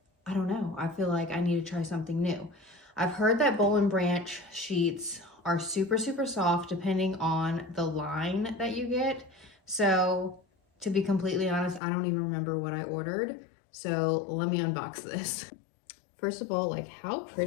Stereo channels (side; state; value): right; drops out; at 11.8 s